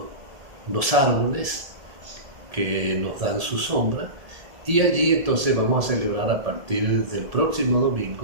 árboles que nos dan su sombra, y allí entonces vamos a celebrar a partir del próximo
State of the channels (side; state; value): left; late; 1.7 ms